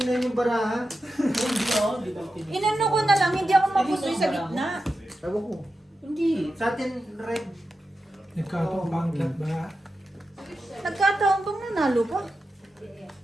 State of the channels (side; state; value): both; normal; correlation 0.90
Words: yung baraha. Inano ko na lang, hindi ako mapusoy sa gitna. Ewan ko. Hindi. Sa atin, red. Nagkataon pangkat ba? Nagkataon bang nanalo pa?